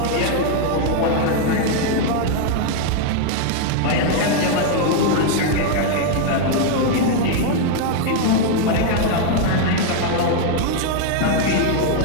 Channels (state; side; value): different; both; correlation 0.00